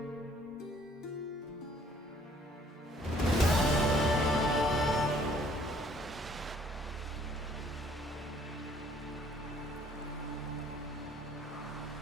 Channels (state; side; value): normal; both; correlation 0.60